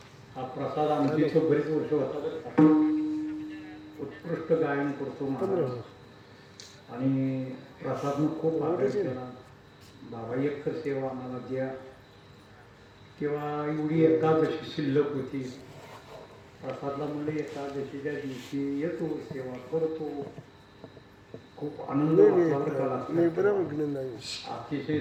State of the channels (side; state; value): both; identical; correlation 1.00